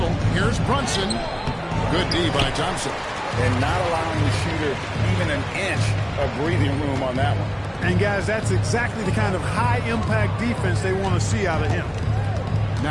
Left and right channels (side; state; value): both; identical; correlation 1.00